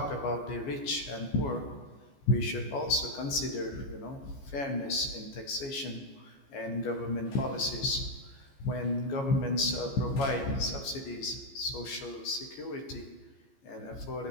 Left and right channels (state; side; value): late; right; 14 ms